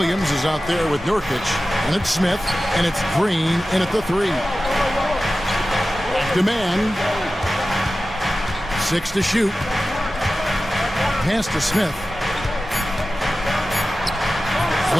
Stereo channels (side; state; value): both; normal; correlation 0.95